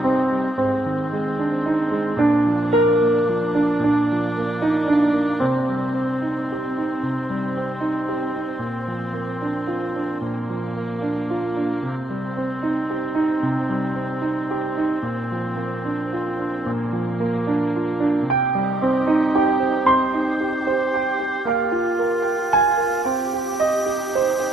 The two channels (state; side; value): normal; both; correlation 0.75